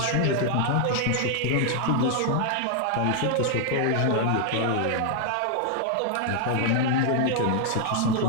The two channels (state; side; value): different; both; correlation 0.00